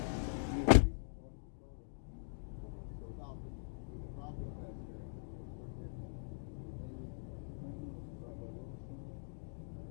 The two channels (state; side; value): silent; right; digital silence